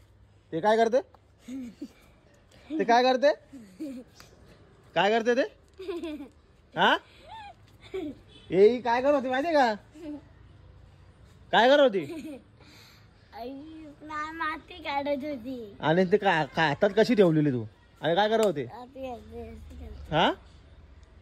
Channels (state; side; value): identical; both; correlation 1.00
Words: ते काय करते ते काय करते काय करते ते हा ए काय करत होती माहितीये का काय करत होती माती काढत होती आणि ते काय हातात कशी ठेवलेली तू आणि काय करत होते हा